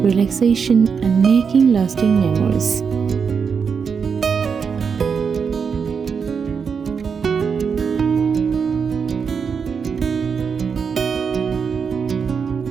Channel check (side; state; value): left; quieter; 6.1 dB